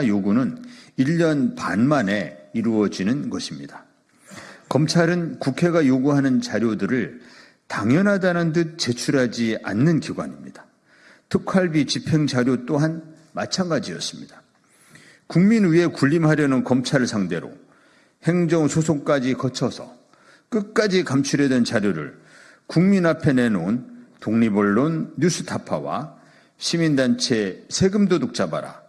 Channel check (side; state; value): both; identical; correlation 1.00